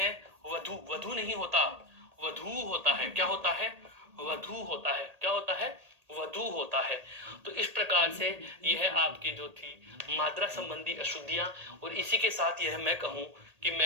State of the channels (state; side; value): late; left; 1.8 ms